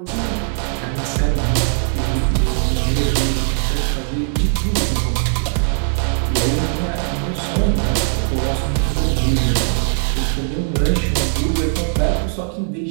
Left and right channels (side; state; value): left; silent; digital silence